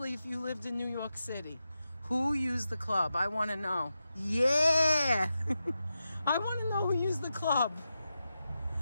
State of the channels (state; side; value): inverted; both; correlation -0.90